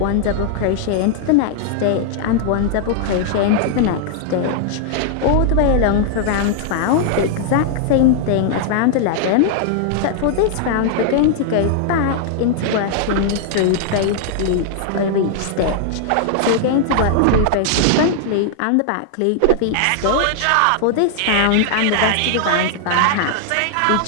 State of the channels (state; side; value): different; both; correlation -0.01